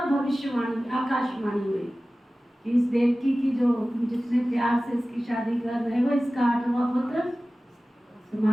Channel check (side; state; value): both; normal; correlation 0.97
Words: भविष्यवाणी आकाशवाणी हुई कि इस देवकी की जो जितने प्यार से इसकी शादी कर रहे हो, इसका 8वां पुत्र